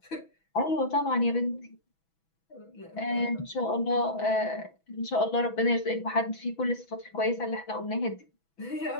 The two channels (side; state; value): right; late; 6.1 ms